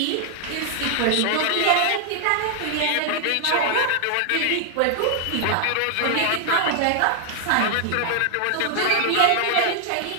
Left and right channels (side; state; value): both; different; correlation 0.00